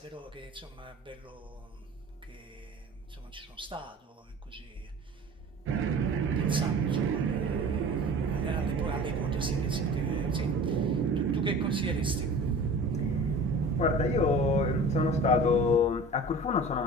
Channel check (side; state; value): both; normal; correlation 0.40